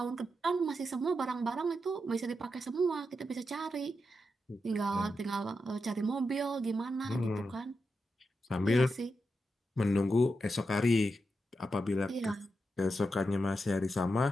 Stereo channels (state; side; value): normal; both; correlation 0.87